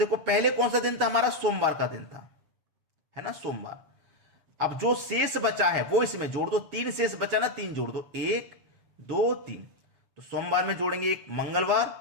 पहले कौन सा दिन था हमारा, सोमवार का दिन था, है ना, सोमवार। अब जो शेष बचा है वो इसमें जोड़ दो। 3 शेष बचा ना, 3 जोड़ दो, 1 2 3। तो सोमवार में जोड़ेंगे 1,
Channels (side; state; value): left; late; 7.1 ms